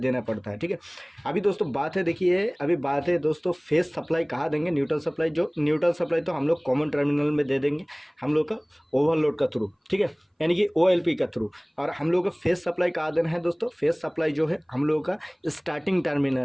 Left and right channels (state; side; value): identical; both; correlation 1.00